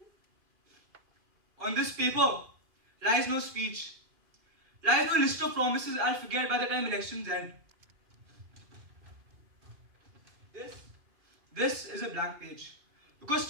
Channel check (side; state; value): left; late; 2.5 ms